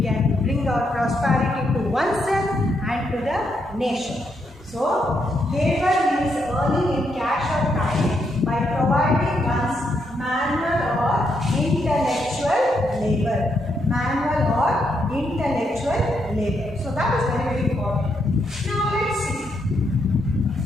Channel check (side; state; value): both; normal; correlation 0.78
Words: bring our prosperity to oneself and to the nation. So, labor means earning in cash or time by providing one's manual or intellectual labor. Manual or intellectual labor. So, that is very, very important. Now, let's see.